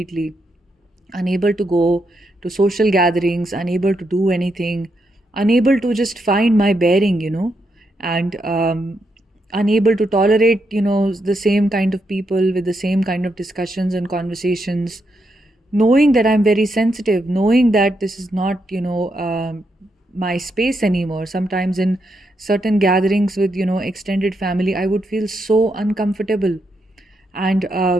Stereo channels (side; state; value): both; normal; correlation 0.81